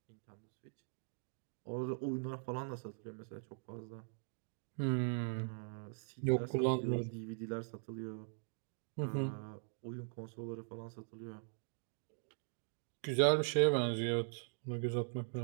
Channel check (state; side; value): silent; left; digital silence